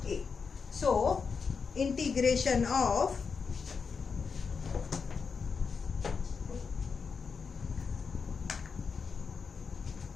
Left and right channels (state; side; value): quieter; right; 5.5 dB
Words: a, so integration of